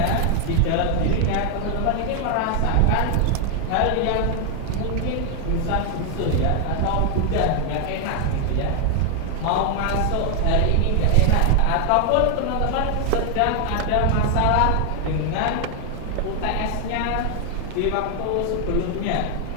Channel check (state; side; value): different; both; correlation 0.00